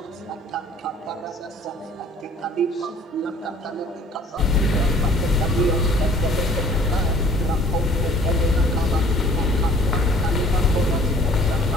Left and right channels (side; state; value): both; normal; correlation 0.53